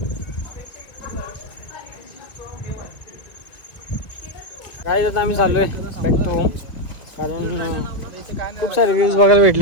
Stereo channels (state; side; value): late; right; 1.8 ms